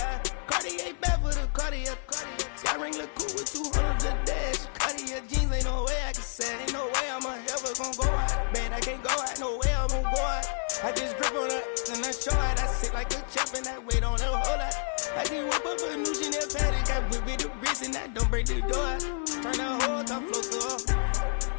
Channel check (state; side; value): silent; right; digital silence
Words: Cartier bad for the Cartier. Sky ring look cool with 200 the dash. Cartier jeans, ain't no way I can say. Ain't no way I'm ever gonna go out. Man, I can't go out, no way I'm gonna go out. I just grip on her and I show out. I sit like a champ and I wait on her whole lot. I just whip up a new Chanel paddock. I whip it the wrist and I don't break the door out. Turn the whole top float to her.